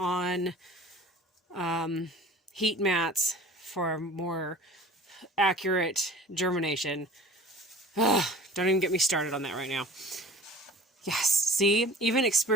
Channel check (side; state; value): both; normal; correlation 0.43